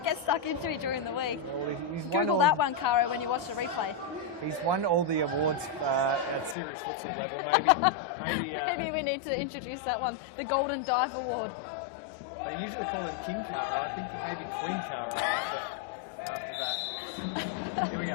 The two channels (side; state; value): right; drops out; at 6.6 s